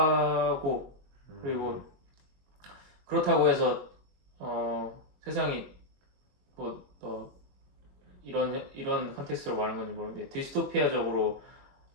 그리고 그렇다고 해서 세상이 뭐 이런 컨텍스트로 말하는 건지 모르는데 디스토피아적으로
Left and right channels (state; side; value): late; left; 22 ms